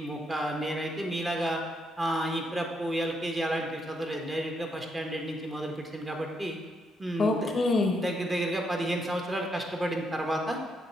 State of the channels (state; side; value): normal; both; correlation 0.77